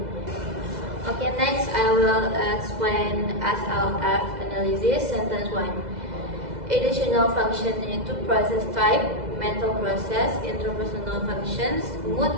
Okay, next I will explain SLF analysis. Sentence 1. Additional function into process type, mental process, interpersonal functions,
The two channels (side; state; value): left; late; 2.0 ms